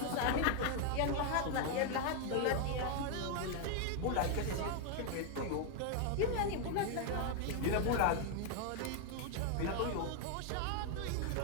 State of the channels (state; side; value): different; both; correlation 0.01